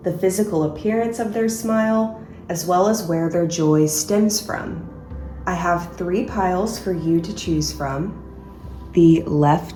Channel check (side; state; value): both; identical; correlation 1.00